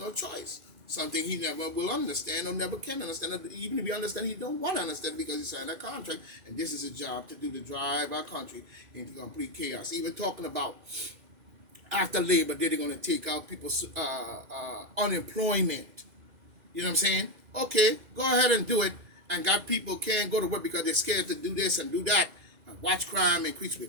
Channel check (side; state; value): left; late; 2.4 ms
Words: choice. Something he never will understand or never can understand. Even if he understands, he don't want to understand because he signed a contract. And this is his job to drive our country into complete chaos. Even talking about after Labor Day, they're going to take out people's unemployment. You know what I'm saying? Okay, go ahead and do it. And got people can't go to work because they're scared to do this and do that. And watch crime increase. We're